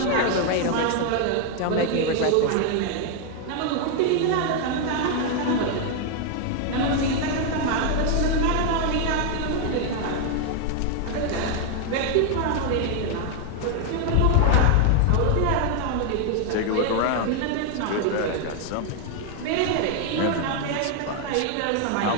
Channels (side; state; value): both; different; correlation 0.00